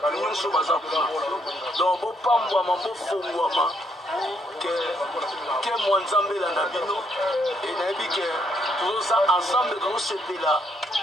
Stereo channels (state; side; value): normal; both; correlation 0.72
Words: nyonso baza kuna. Donc bopambwama bofongwama ke mwa nzambe elanda bino e nayebi ke tozoza ensemble tozosepela